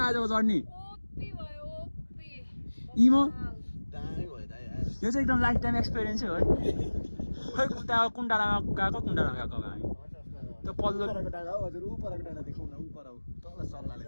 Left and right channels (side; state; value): both; inverted; correlation -1.00